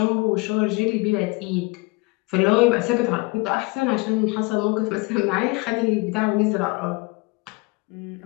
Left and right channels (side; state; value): right; quieter; 25.8 dB